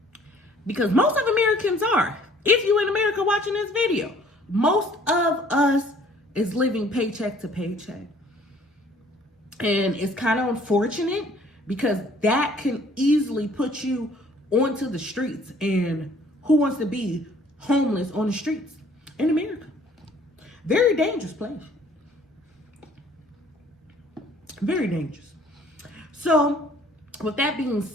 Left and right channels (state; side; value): normal; both; correlation 0.57